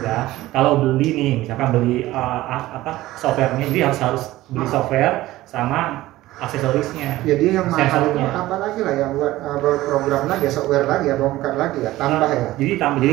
ya. Kalau beli nih, misalkan beli softwarenya, jadi harus beli software sama aksesorisnya. Jadi yang mahal itu Sensornya. apa lagi lah yang buat program lagi ya, software lagi ya, bongkar lagi ya, tambah ya. Jadi jadi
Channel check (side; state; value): left; quieter; 16.7 dB